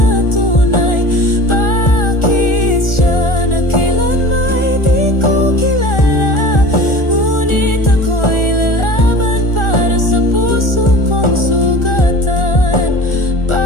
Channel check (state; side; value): late; right; 1.4 ms